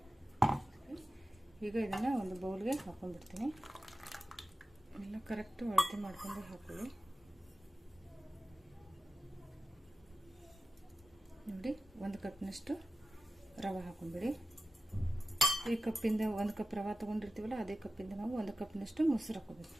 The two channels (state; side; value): normal; both; correlation 0.93